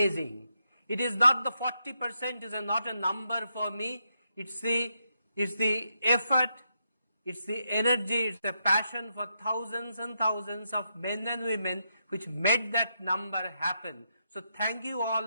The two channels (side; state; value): both; inverted; correlation -0.82